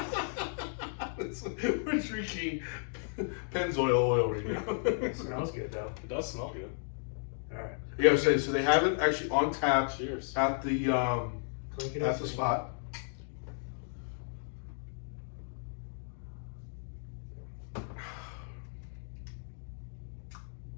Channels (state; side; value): silent; right; digital silence